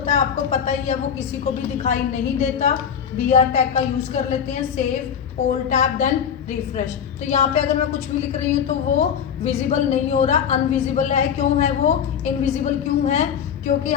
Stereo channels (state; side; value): quieter; right; 8.0 dB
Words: है आपको पता ही है वो किसी को भी दिखाई नहीं देता। BR टैग का यूज कर लेते हैं, save all tab then refresh. तो यहाँ पे अगर मैं कुछ भी लिख रही हूँ तो वो विजिबल नहीं हो रहा, अनविजिबल है। क्यों है वो इनविजिबल, क्यों है? क्योंकि